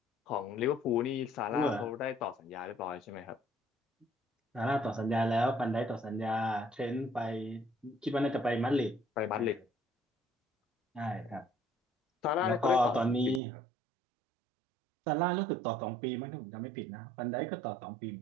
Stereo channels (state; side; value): drops out; left; at 13.4 s